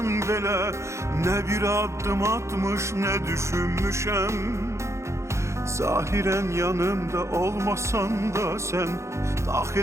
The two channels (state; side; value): late; left; 0.14 ms